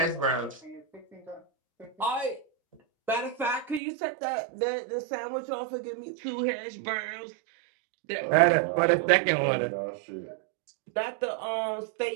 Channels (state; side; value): drops out; left; at 3.8 s